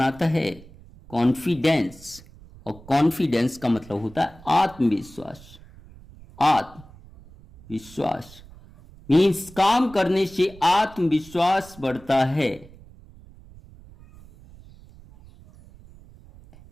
है। कॉन्फिडेंस, और कॉन्फिडेंस का मतलब होता है आत्मविश्वास। आत्मविश्वास मीन्स काम करने से आत्मविश्वास बढ़ता है।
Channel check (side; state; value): right; noise; rumble, 22 dB below the sound